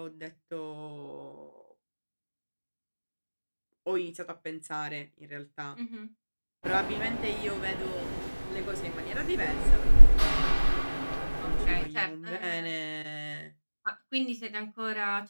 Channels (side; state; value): both; inverted; correlation -1.00